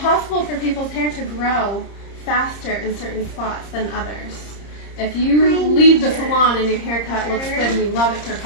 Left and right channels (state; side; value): late; right; 30 ms